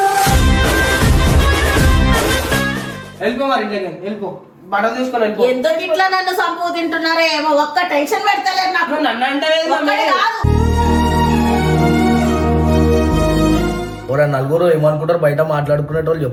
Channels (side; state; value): both; identical; correlation 1.00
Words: వెళ్ళిపో మరి వెళ్ళిపో బట్టలు తీసుకొని వెళ్ళిపో. ఎందుకు ఇట్లా నన్ను సంపూ తింటున్నారో ఏమో ఒక్క టెన్షన్ పెడతలేదు నాకు. నన్ను అంటే నలుగురు ఏమనుకుంటారు బయట మాట్లాడుకునేటోళ్ళు